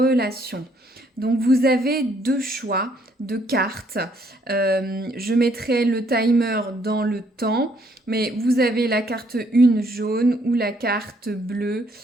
Donc vous avez deux choix de cartes. Je mettrai le timer dans le temps, mais vous avez la carte 1 jaune ou la carte bleue.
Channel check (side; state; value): both; normal; correlation 0.68